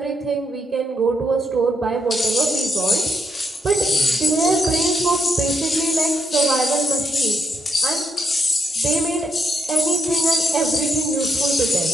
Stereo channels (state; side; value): normal; both; correlation 0.78